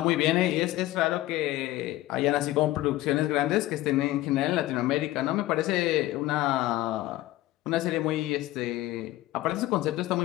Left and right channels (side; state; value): right; quieter; 16.5 dB